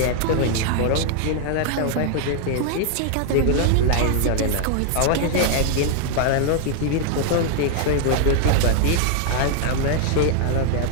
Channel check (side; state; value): both; different; correlation 0.00